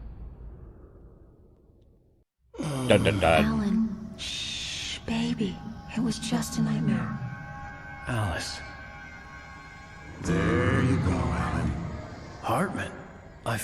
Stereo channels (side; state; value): both; identical; correlation 1.00